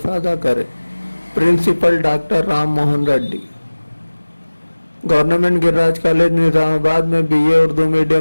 करें। Principal doctor Ram Mohan Reddy. Government Giriraj college Nizamabad में बीए उर्दू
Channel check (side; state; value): both; inverted; correlation -1.00